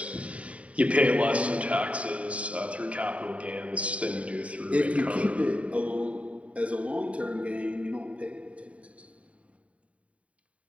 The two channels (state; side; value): late; left; 0.065 ms